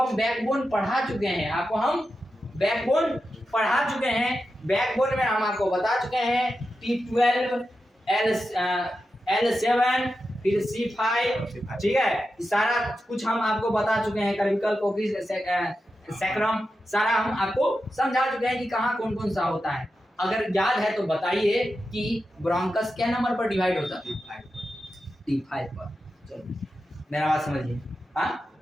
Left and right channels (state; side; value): normal; both; correlation 0.90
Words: बैकबोन पढ़ा चुके हैं, आपको हम बैकबोन पढ़ा चुके हैं। बैकबोन में हम आपको बता चुके हैं T12, L7, फिर C5, ठीक है। सारा कुछ हम आपको बता चुके हैं, कर्विकल कोकिस सैक्रम, सारा हम आपको समझा चुके हैं कि कहाँ कौन कौन सा होता है। अगर याद है तो बताइए कि ब्रोंकस क्या नंबर पर डिवाइड होता है? T5 पर। चलो मेरा बात समझिए। हाँ